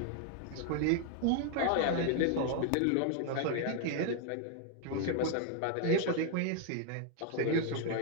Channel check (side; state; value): both; different; correlation 0.00